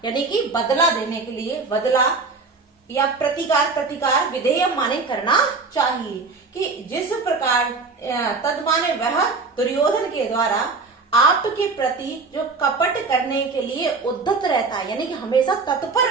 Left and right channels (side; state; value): left; quieter; 4.2 dB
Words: यानी कि बदला देने के लिए, बदला या प्रतिकार, प्रतिकार विधेयम माने करना चाहिए, कि जिस प्रकार तद माने वह दुर्योधन के द्वारा आपके प्रति जो कपट करने के लिए उद्धत रहता है, यानी कि हमेशा तत्पर